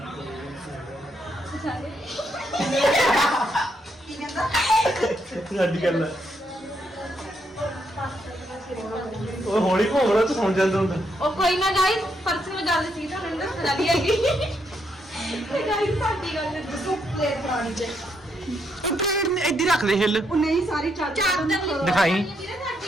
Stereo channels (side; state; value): both; normal; correlation 0.77